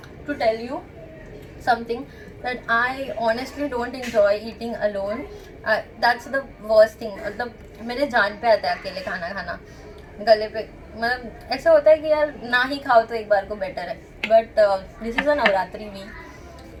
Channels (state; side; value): identical; both; correlation 1.00